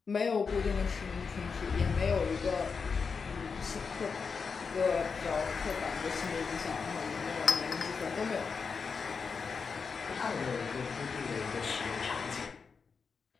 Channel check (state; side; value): quieter; right; 5.4 dB